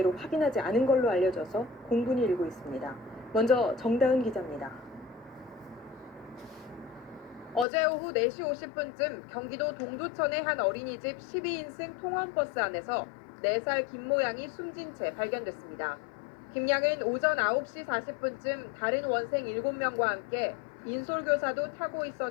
확인하지 않은 걸로 알려져서 공분이 일고 있습니다. 먼저 정다은 기자입니다. 어제 오후 4시 50분쯤 경기도 동두천의 한 어린이집 12인승 통원버스 안에서 4살 김모양이 숨진 채 발견됐습니다. 김양은 오전 9시 40분쯤 다른 원생 7명과 함께 인솔교사도 타고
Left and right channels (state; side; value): drops out; right; at 7.7 s